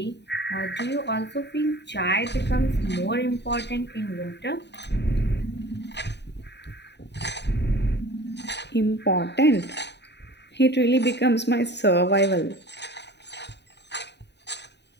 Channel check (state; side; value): late; right; 0.50 ms